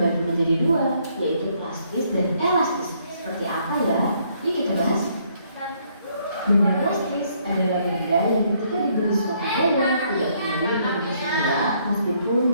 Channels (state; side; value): inverted; both; correlation -0.69